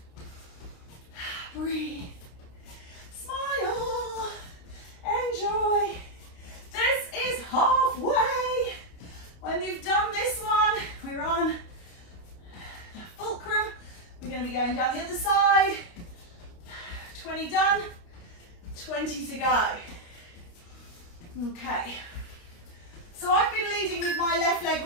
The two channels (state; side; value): late; right; 29 ms